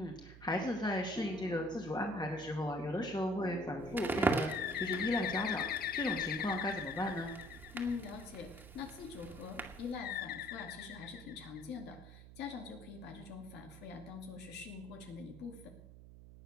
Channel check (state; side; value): noise; right; hum, 16 dB below the sound